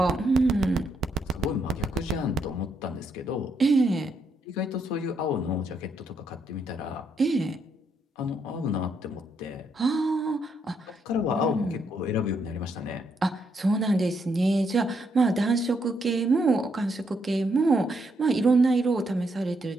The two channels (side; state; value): both; normal; correlation 0.76